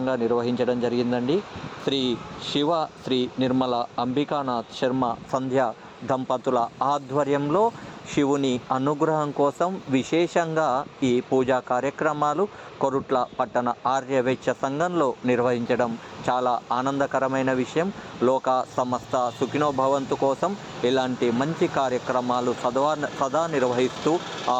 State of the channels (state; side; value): identical; both; correlation 1.00